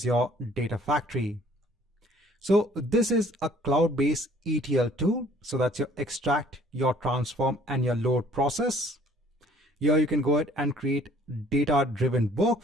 Data Factory. So this is a cloud-based ETL tool. So that's your extract, your transform, and your load process. Here you can go ahead and create data-driven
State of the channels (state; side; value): normal; both; correlation 0.57